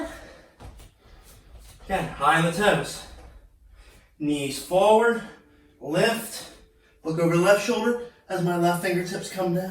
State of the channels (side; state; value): both; identical; correlation 1.00